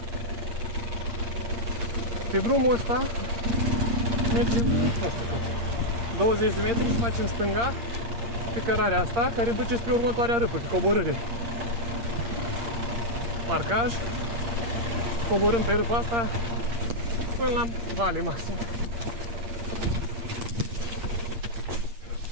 Pe drumul ăsta mergem, nu știu cât, 20 de metri și facem stânga pe cărarea asta, care duce spre următoarea râpă, pe coborâre. Marcaj, coborâm pe râpa asta până la vale maxim.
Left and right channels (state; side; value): late; left; 8.7 ms